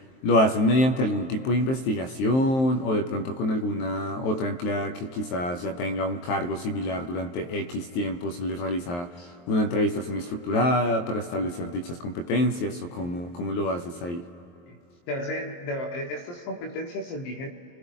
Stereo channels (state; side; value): late; right; 23 ms